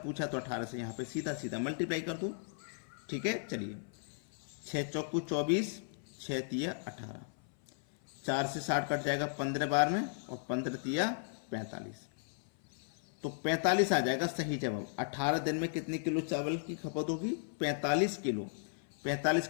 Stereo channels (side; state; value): right; silent; 54 dB below the other